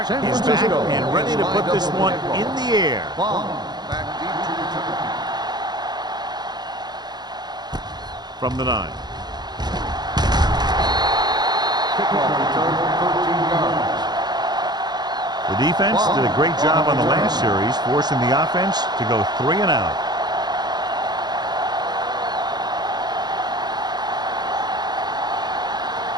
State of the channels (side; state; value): left; late; 0.20 ms